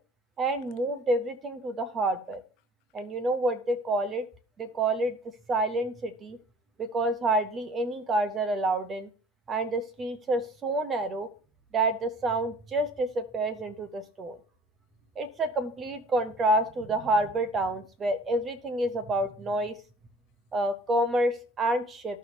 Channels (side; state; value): both; normal; correlation 0.50